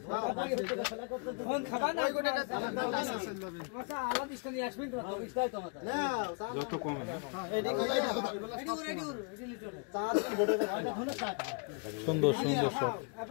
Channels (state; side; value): quieter; right; 35.4 dB